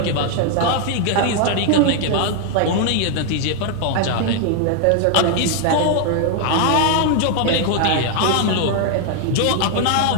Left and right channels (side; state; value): both; different; correlation 0.00